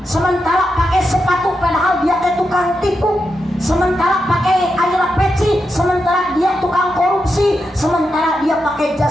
Sementara pakai sepatu padahal dia teh tukang tipu. Sementara pakai ayeuna peci, sementara dia tukang korupsi. Sementara dia pakai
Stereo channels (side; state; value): both; normal; correlation 0.86